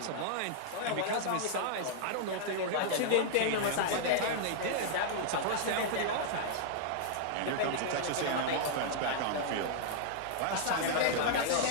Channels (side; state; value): both; different; correlation -0.01